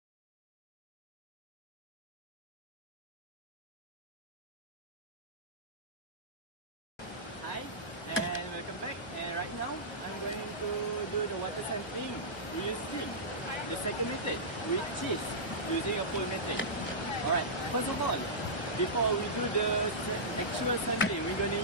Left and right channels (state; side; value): late; right; 1.0 ms